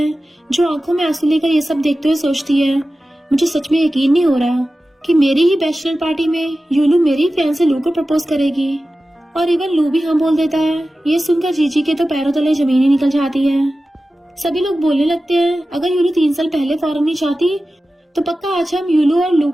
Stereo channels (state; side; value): normal; both; correlation 0.95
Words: जो आंखों में आंसू लेकर ये सब देखते हुए सोचती है, मुझे सच में यकीन नहीं हो रहा कि मेरी ही बैचलर पार्टी में यूलू मेरी फैंसे लू को प्रपोज करेगी। और इवन लू भी हाँ बोल देता है। ये सुनकर जीजी के तो पैरों तले जमीन ही निकल जाती है। सभी लोग बोलने लगते हैं, अगर यूलू 3 साल पहले फॉरन नहीं चाहती तो पक्का आज हम यूलू और लू